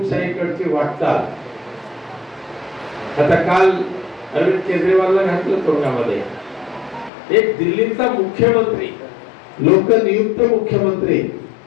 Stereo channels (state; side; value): drops out; right; at 7.1 s